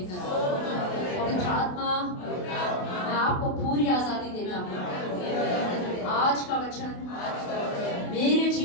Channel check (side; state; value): right; late; 28 ms